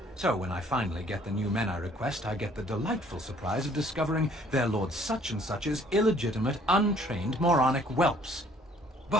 So when I finally get the new men I request, I get the delightful surprise of discovering their Lord Such-and-Such's illegitimate, untrained, moronic whelps.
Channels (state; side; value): normal; both; correlation 0.59